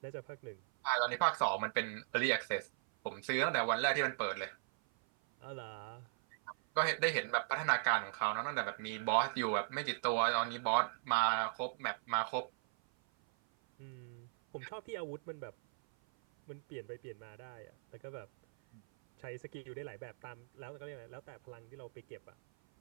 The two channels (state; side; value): silent; left; 52 dB below the other